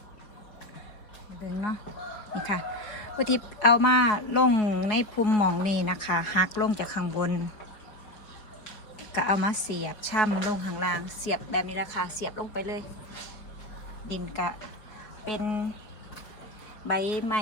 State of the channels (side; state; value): right; late; 4.8 ms